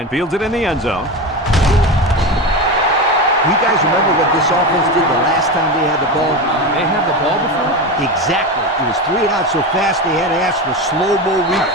fields it in the end zone. You guys remember what this offense did the last time they had the ball? They had the ball before? Exactly. It was 3 and out so fast they had to ask for slow-mo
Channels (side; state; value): both; normal; correlation 0.21